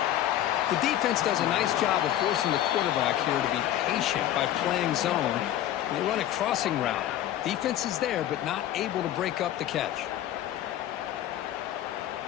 The defense does a nice job of forcing the quarterback here to be patient by playing zone. They run a crossing route. Defense is there, but not able to break up the catch.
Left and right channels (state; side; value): quieter; right; 12.4 dB